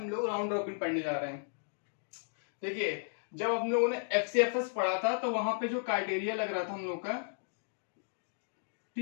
लोग राउंड रॉबिन पढ़ने जा रहे हैं। देखिए, जब हम लोगों ने एफसीएफएस पढ़ा था तो वहां पे जो क्राइटेरिया लग रहा था हम लोग का,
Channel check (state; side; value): silent; right; digital silence